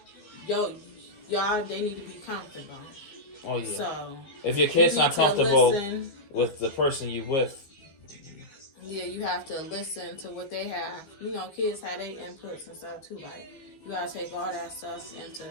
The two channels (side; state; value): right; late; 15 ms